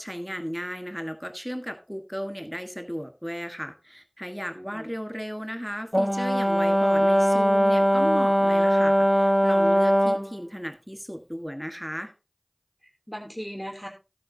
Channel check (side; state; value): both; identical; correlation 1.00